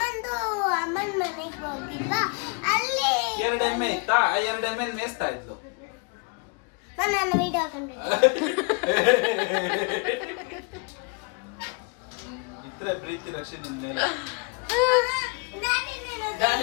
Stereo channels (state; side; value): quieter; right; 33.1 dB